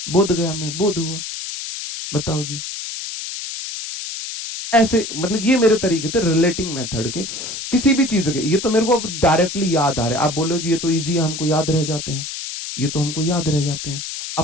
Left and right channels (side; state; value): left; noise; hiss, 7 dB below the sound